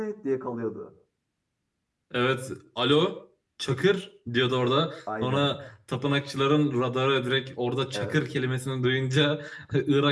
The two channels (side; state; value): both; identical; correlation 1.00